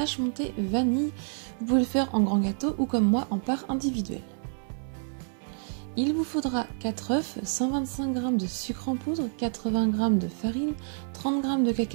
montée vanille. Vous pouvez le faire en grand gâteau ou comme moi en part individuelle. Il vous faudra 4 œufs, 125 g de sucre en poudre, 80 g de farine, 30 g de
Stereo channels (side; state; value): left; silent; digital silence